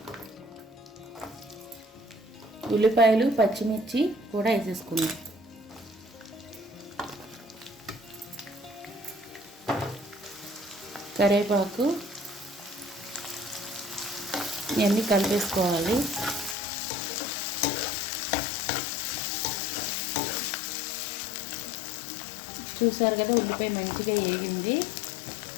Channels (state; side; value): drops out; right; at 16.6 s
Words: ఉల్లిపాయలు, పచ్చిమిర్చి కూడా వేసేసుకుందాం. కరివేపాకు, ఇవన్నీ కలిపేసుకోవాలి. చూసారు కదా, ఉల్లిపాయ మంచిగా వేగింది.